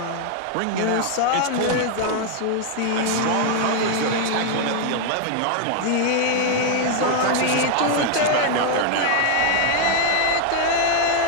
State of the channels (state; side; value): different; both; correlation 0.00